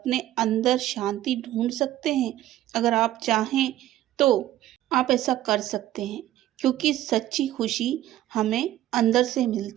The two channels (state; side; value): quieter; left; 13.7 dB